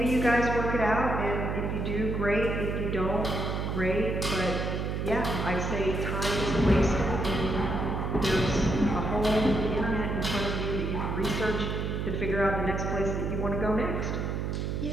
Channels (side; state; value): right; noise; hum, 2 dB below the sound